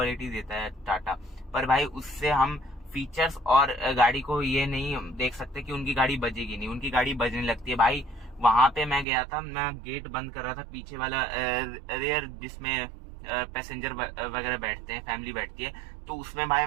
देता है टाटा। पर भाई उससे हम फीचर्स और गाड़ी को ये नहीं देख सकते कि उनकी गाड़ी बजेगी नहीं, उनकी गाड़ी बजने लगती है भाई। वहां पे मैं गया था, मैं गेट बंद कर रहा था, पीछे वाला रेयर जिसमें पैसेंजर वगैरह बैठते हैं, फैमिली बैठती है, तो उसमें भाई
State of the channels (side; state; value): left; drops out; at 9.1 s